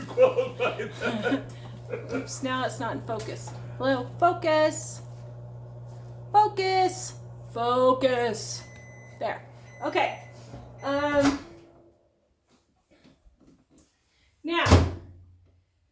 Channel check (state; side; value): identical; both; correlation 1.00